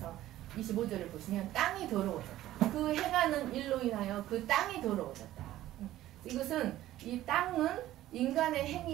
25절을 보시면 땅이 더러워졌다. 그 행하는 일로 인하여 그 땅이 더러워졌다. 이것은 이 땅은 인간의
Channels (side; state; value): left; quieter; 14.4 dB